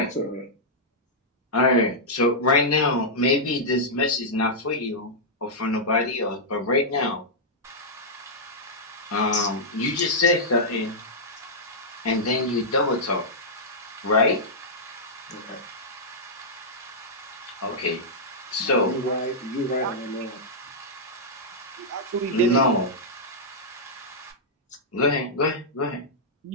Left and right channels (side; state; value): both; normal; correlation -0.10